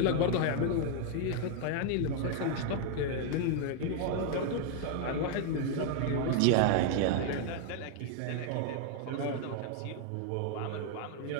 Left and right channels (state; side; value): different; both; correlation 0.00